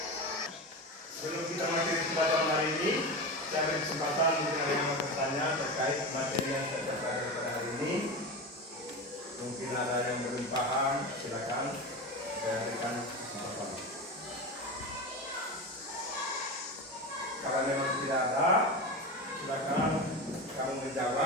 Sebelum kita mengakhiri pelajaran hari ini, saya beri kesempatan mungkin ada yang mau bertanya terkait materi yang saya pelajari pada hari ini. Mungkin ada yang belum paham, silakan Saya berikan kesempatan. Kalau memang tidak ada, silakan kamu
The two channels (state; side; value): normal; both; correlation 0.23